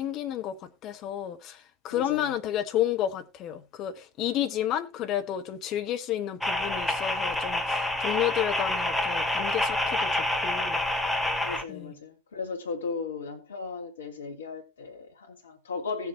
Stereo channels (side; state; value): right; quieter; 4.6 dB